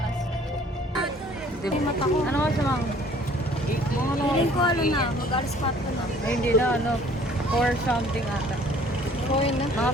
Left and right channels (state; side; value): normal; both; correlation 0.55